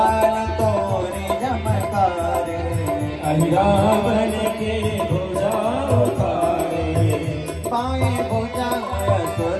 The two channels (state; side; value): identical; both; correlation 1.00